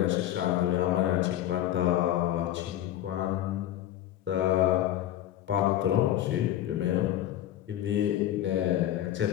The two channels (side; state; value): right; quieter; 12.5 dB